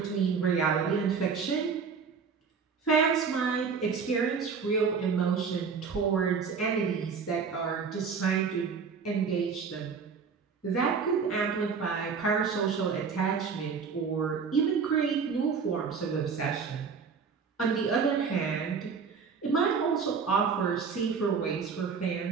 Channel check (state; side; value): quieter; left; 5.7 dB